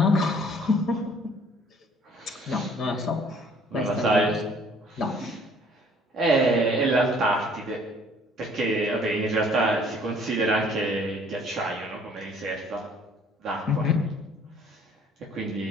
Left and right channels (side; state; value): both; normal; correlation 0.57